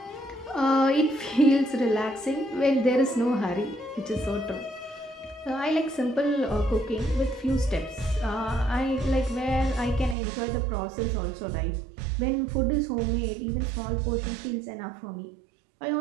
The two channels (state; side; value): drops out; left; at 10.2 s